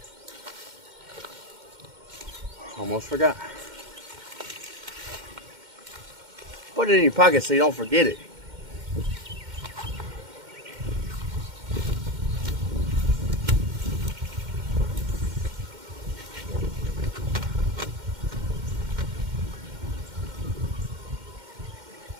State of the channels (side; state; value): left; late; 2.1 ms